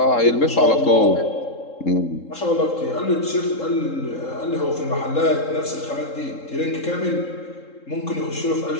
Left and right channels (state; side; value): late; right; 3.7 ms